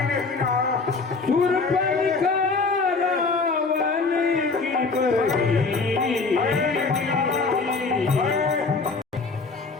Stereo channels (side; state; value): right; quieter; 4.1 dB